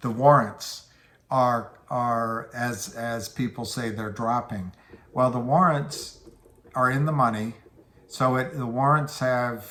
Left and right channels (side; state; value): both; identical; correlation 1.00